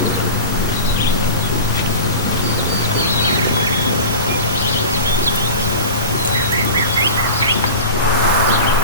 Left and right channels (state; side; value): inverted; both; correlation -0.35